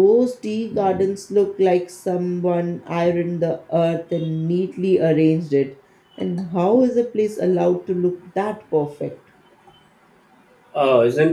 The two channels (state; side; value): identical; both; correlation 1.00